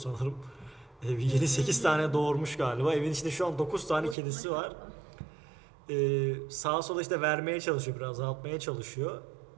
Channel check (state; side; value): drops out; left; at 4.2 s